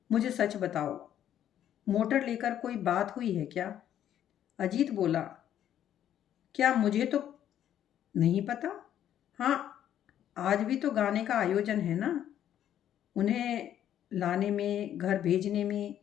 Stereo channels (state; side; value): quieter; right; 10.7 dB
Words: मुझे सच बताओ, मोटर लेकर कोई बात हुई है क्या? अजीत बोला, क्या मुझे तो नहीं पता। हाँ, आज भी तो गाने का आयोजन है ना। उन्हें लाने में, घर भेजने में